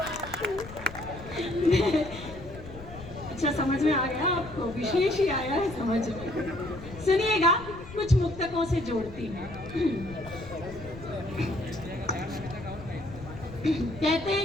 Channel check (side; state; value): left; noise; rumble, 14 dB below the sound